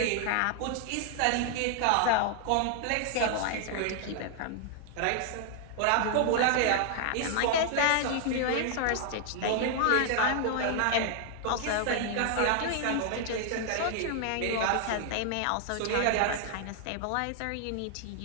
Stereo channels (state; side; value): different; both; correlation 0.00